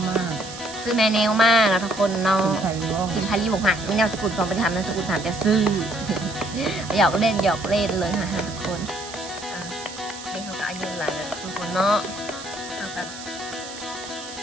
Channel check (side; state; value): right; noise; hiss, 13 dB below the sound